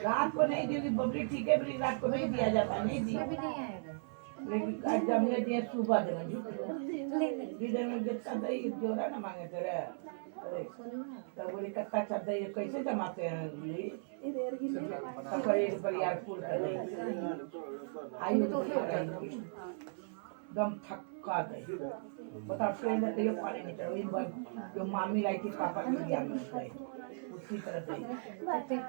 रात को नहीं दी बबली, ठीक है बबली, रात को नहीं दिया जाता, नहीं दी, लेकिन आज जब ने दिया सुबह देना झूठो लीडर में जितना दही जोड़ा ना मांगे तेरे। अरे तब बोली कत्ता अच्छा दही कैसे जमाते हैं बोली, तब एक बरियारपुर का दही आई होगी दम थक्का दही। बताओ ट्रेन से कहियो पानी नहीं चढ़ा, वही जो मामी लाई थी पापा के लिया में गई उसी तरह दही।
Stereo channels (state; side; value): silent; left; 53 dB below the other